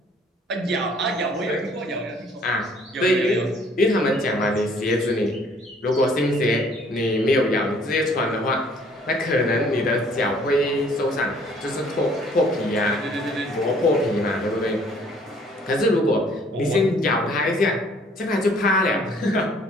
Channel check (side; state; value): both; normal; correlation 0.59